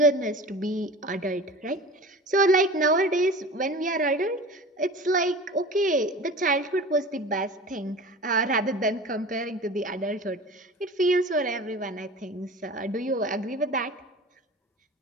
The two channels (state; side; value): normal; both; correlation 0.37